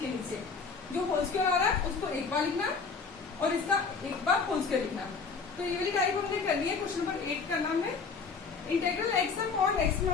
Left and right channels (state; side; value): quieter; right; 5.0 dB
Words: के नीचे। जो होल स्क्वायर आ रहा है उसको एक बार लिखना और इसका एक बार होल स्क्वायर लिखना। तो ये वाली टाइप हमने करनी है। क्वेश्चन नंबर 8 का नाम है integral x upon x